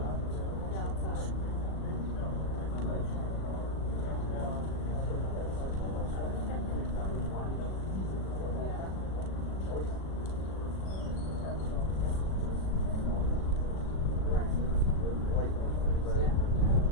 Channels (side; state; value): right; late; 37 ms